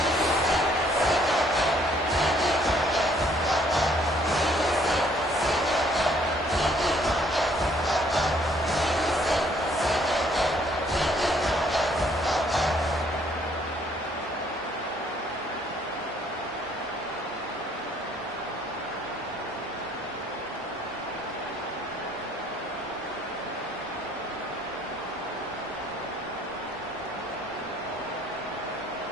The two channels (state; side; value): normal; both; correlation 0.63